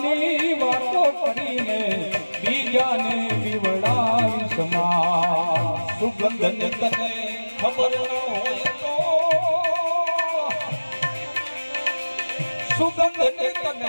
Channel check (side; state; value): both; inverted; correlation -1.00